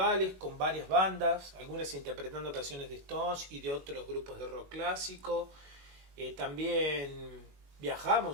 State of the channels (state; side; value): late; left; 21 ms